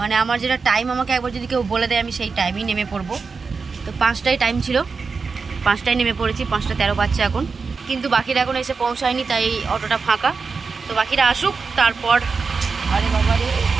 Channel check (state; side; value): quieter; left; 4.8 dB